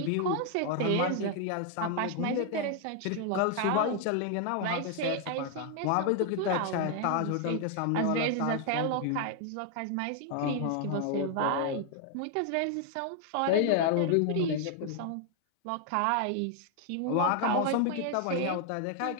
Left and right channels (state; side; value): different; both; correlation 0.00